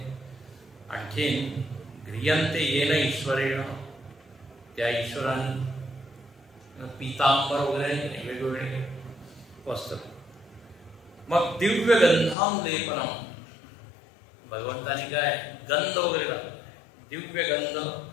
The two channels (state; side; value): drops out; right; at 12.4 s